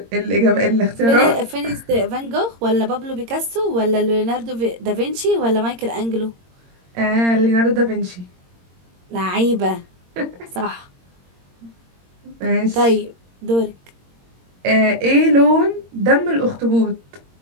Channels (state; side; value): late; left; 22 ms